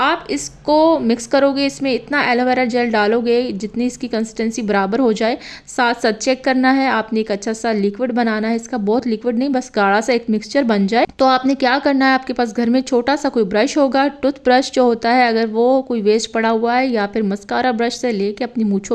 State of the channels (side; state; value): both; identical; correlation 1.00